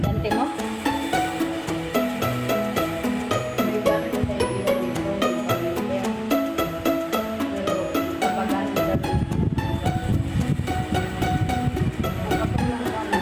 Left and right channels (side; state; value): both; identical; correlation 1.00